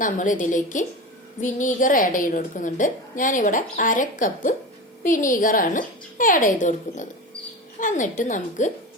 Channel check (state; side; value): normal; both; correlation 0.26